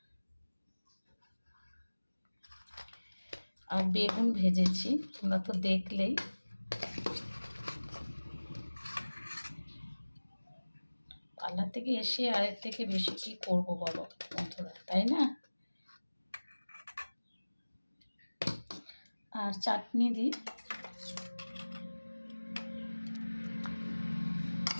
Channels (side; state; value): both; inverted; correlation -1.00